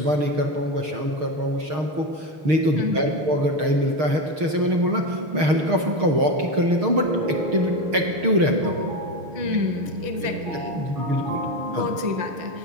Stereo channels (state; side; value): late; left; 6.5 ms